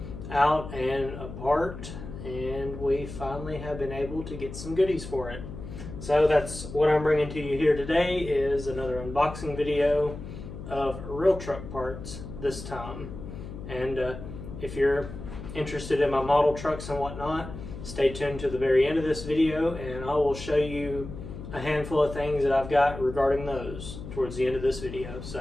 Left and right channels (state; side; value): noise; left; hum, 11 dB below the sound